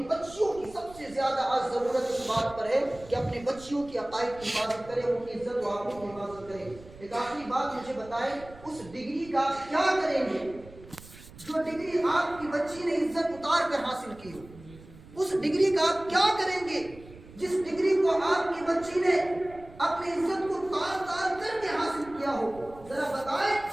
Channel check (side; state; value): right; noise; rumble, 20 dB below the sound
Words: بچیوں کی سب سے زیادہ آج ضرورت اس بات پر ہے کہ اپنے بچیوں کی عقائد کی حفاظت کریں، ان کی عزت و آبرو کی حفاظت کریں. ایک آخری بات مجھے بتائیں، اس ڈگری کا آپ کیا کریں گے جو ڈگری آپ کی بچی نے عزت اتار کر حاصل کی ہو؟ اس ڈگری کا آپ کیا کریں گے جس ڈگری کو آپ کی بچی نے اپنی عزت کو تار تار کر کے حاصل کیا ہو؟ ذرا بتائیں.